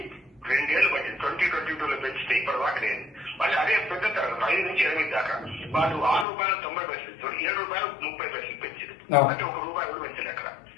2 ఏళ్లు పట్టింది. 2022లో పెంచితే ఇప్పటి దాకా లేదు. మళ్ళీ అదే పెద్ద తరగతి 5 నుంచి 8 దాకా వాళ్ళు 6 రూపాయల 90 పైసలు ఇస్తారు, 7 రూపాయల 30 పైసలు పెంచారు. అంటే 1 రూపాయి కూడా పెంచలేదు అక్కడ.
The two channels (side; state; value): right; drops out; at 6.2 s